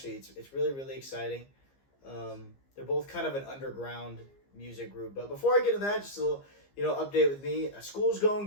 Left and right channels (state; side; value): late; right; 15 ms